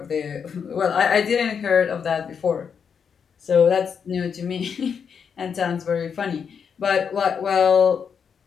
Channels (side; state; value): right; quieter; 6.8 dB